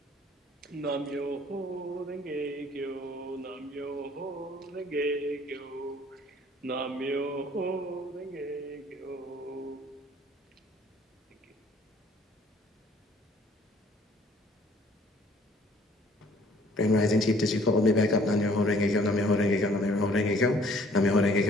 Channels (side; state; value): both; normal; correlation 0.57